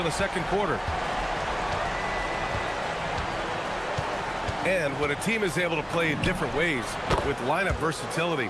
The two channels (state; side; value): identical; both; correlation 1.00